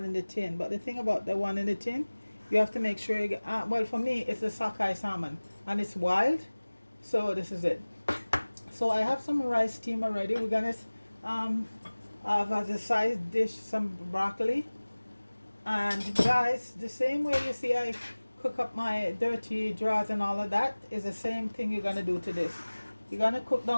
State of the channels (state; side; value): inverted; both; correlation -1.00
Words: in the tin. But the thing about the one in the tin, you have to make sure you get. Well, for me, it's a sockeye salmon, and it's wild. So this is it. So I have some rice steam already. We're gonna um, have as a side dish some broccoli. And guys, the same way you see I cook up my dirty drawers and all of that is the same thing you're gonna do to this. You're gonna cook